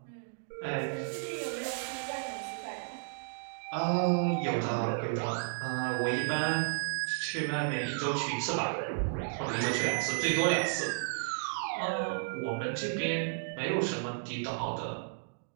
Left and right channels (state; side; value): silent; left; digital silence